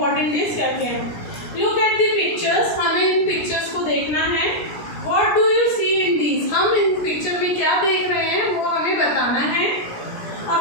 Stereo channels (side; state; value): right; late; 17 ms